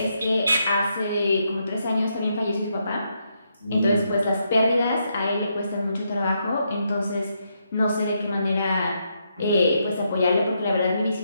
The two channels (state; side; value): inverted; both; correlation -0.79